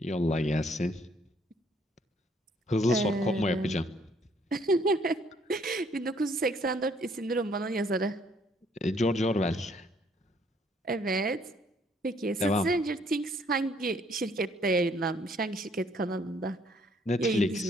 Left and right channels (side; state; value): both; normal; correlation 0.65